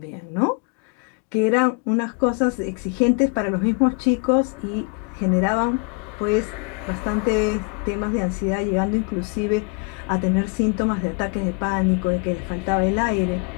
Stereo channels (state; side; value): quieter; right; 34.1 dB